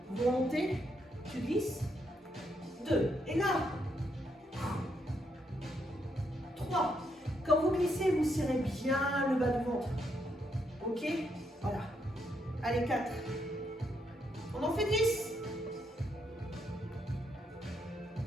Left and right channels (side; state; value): both; normal; correlation 0.77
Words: vous remontez, tu glisses. 2, et là, 3. Quand vous glissez, vous serrez bien le bas du ventre. Ok? Voilà. Allez, 4. On en fait 10.